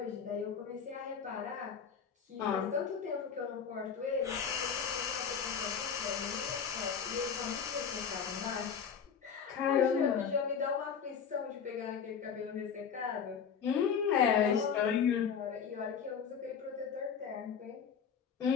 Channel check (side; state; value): right; quieter; 7.0 dB